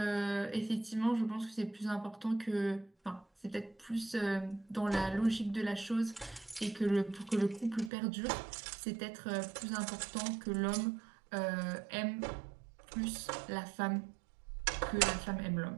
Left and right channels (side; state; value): left; drops out; at 7.9 s